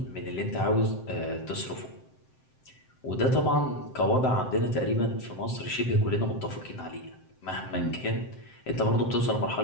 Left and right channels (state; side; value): late; right; 7.7 ms